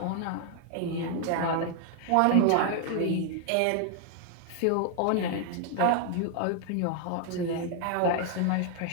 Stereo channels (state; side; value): different; both; correlation 0.00